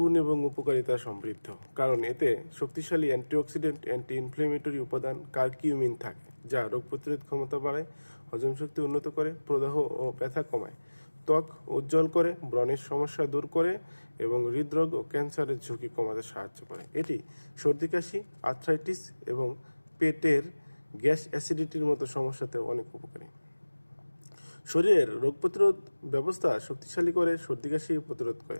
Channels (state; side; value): inverted; both; correlation -1.00